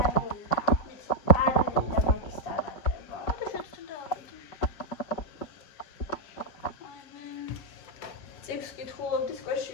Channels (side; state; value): right; late; 6.2 ms